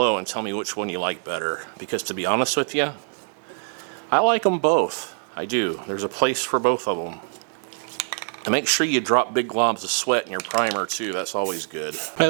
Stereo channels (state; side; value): silent; left; digital silence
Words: and tell me which one you like better, because to be honest with you, I like them both. I do. There's a place for both of them. And make sure you drop big globs of sweat in your primer too. That's always good. By